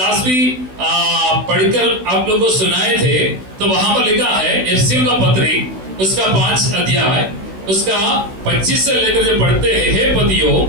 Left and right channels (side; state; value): left; late; 16 ms